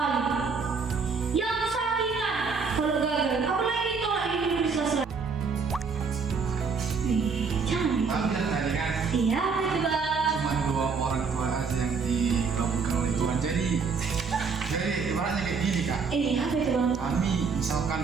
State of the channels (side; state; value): left; quieter; 5.1 dB